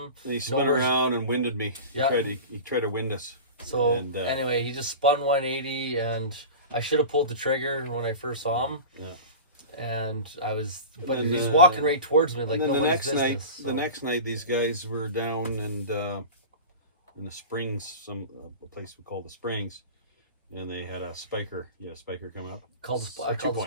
And he spun nowhere's- around and winded me. Yeah. He tried to wind us. So And, anyway, he just spun 180, and I should have pulled the trigger when I first saw him. Yeah. And I was, but And then, he's walking right towards me like and then nobody's business. the next night, these guys were down and in the Springs, a place we call the Springs, and they had a spiker. Yeah, spiker come up. I called the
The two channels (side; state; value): both; inverted; correlation -0.32